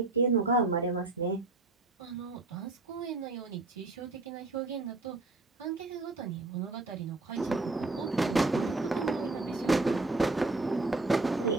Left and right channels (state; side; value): quieter; left; 3.2 dB